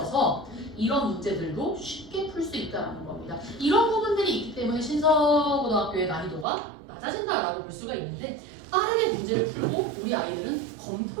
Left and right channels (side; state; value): left; drops out; at 6.5 s